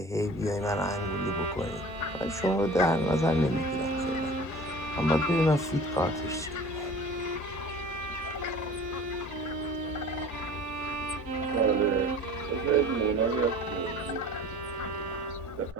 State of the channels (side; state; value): both; normal; correlation 0.42